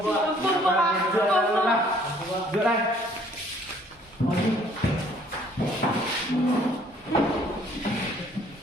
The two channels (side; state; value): both; normal; correlation 0.60